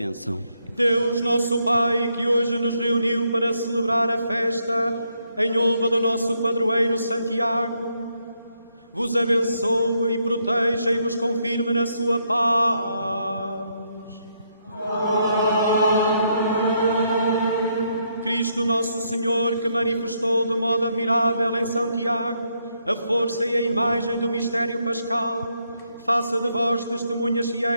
Deus, nosso Pai, que hoje nos reuniu para celebrar a festa em honra do nosso padroeiro Santiago, vos abençoe e proteja e vos confirme na sua paz. Cristo nosso Senhor, que manifestou de modo admirável em São Tiago a força e a imagem do mistério pascal, faça de vós testemunhas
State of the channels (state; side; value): inverted; both; correlation -0.76